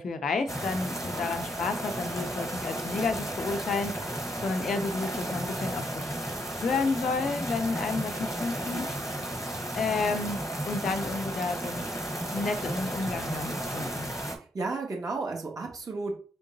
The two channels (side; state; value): both; normal; correlation 0.75